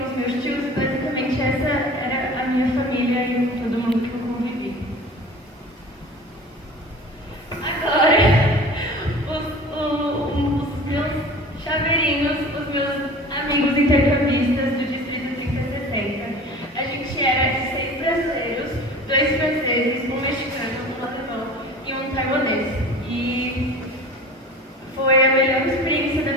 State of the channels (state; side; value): normal; both; correlation 0.40